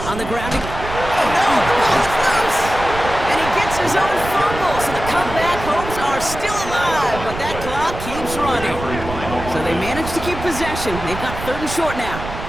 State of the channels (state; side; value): noise; right; rumble, 9 dB below the sound